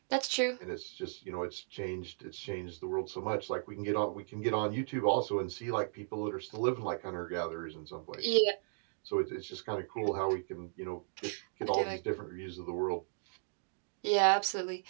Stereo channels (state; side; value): silent; left; digital silence